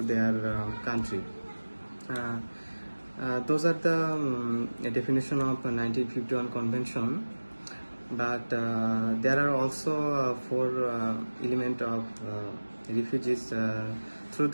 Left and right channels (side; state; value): both; inverted; correlation -1.00